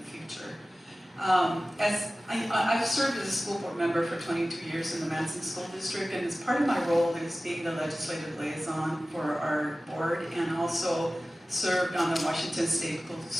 future. As I've served as a school board member for 22 years in the Manson School District, and as part of my role is being the legislative liaison for our board, and also served on the Washington State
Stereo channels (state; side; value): normal; both; correlation 0.96